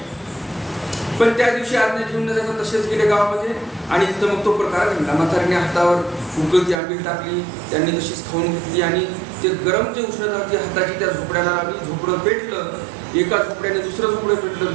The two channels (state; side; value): drops out; left; at 6.8 s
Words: पण त्या दिवशी आज्ञा घेऊन न जाता तसेच गेले गावामध्ये आणि तिथं मग तो प्रकार घडला. म्हातारीने हातावर उकळती आंबील टाकली, त्यांनी तशीच खाऊन घेतली आणि ते गरम जे उष्णता होती हाताची त्या झोपड्याला लावली. झोपडं पेटलं. एका झोपड्याने दुसरं झोपडं पेटलं,